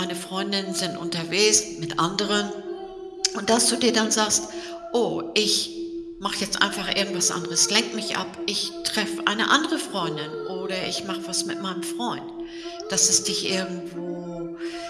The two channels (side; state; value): both; identical; correlation 1.00